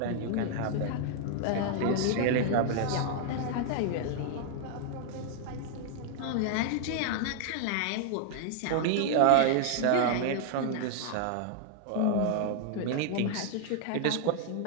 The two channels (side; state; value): both; different; correlation 0.00